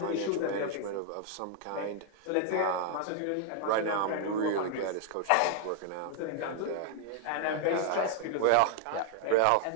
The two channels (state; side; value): different; both; correlation 0.00